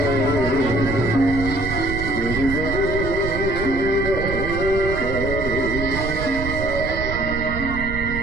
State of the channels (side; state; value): right; noise; rumble, 6 dB below the sound